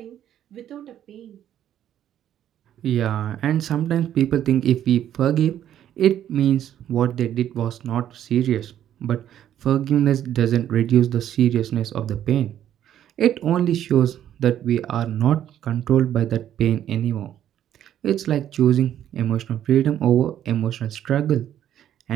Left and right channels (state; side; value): quieter; left; 10.9 dB